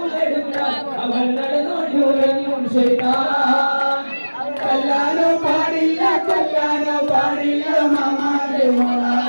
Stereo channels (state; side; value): inverted; both; correlation -1.00